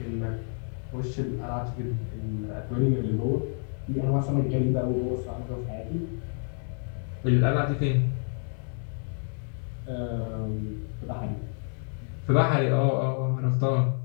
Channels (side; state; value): right; silent; 56 dB below the other